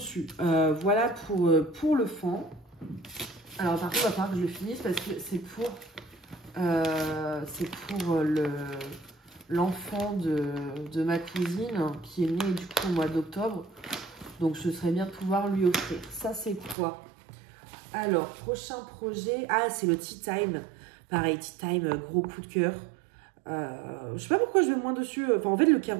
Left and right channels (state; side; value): drops out; left; at 16.8 s